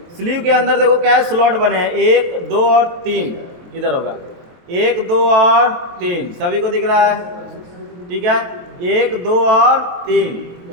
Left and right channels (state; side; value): late; left; 23 ms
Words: स्लीव के अंदर देखो क्या है, स्लॉट बने हैं 1, 2 और 3। इधर होगा 1, 2 और 3, सभी को दिख रहा है। ठीक है, 1, 2 और